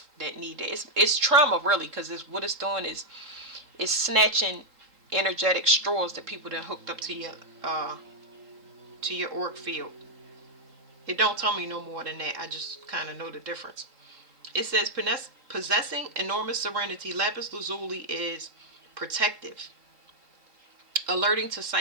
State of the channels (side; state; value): left; late; 3.8 ms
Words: that need it. It's trauma really, because what it's doing is it's snatching energetic straws that people that hooked up to your auric field. It don't tell me no more than that. I just kind of know the difference. It says possessing enormous serenity, lapis lazuli is protective, alerting to